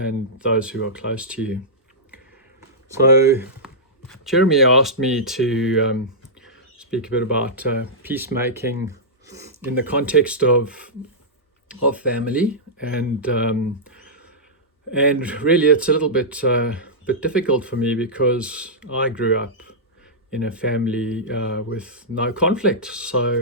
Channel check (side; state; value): both; normal; correlation -0.13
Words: those who are close to you. So Jeremy asked me to speak a bit about peacemaking in the context of family, and really it's a little bit difficult for me because I grew up in a family with no conflict,